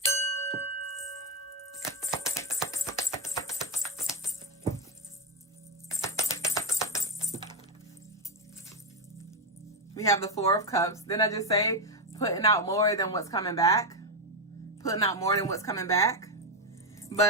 We have the Four of Cups. Didn't I just say putting out more than what's coming back? Putting out more than what's coming back.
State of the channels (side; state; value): both; normal; correlation 0.06